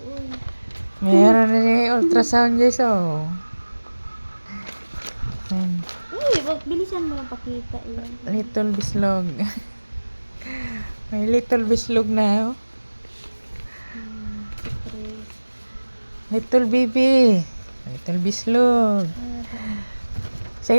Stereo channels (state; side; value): inverted; both; correlation -1.00